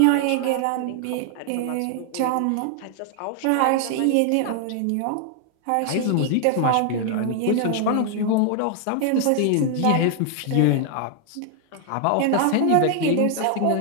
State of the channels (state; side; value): different; both; correlation 0.00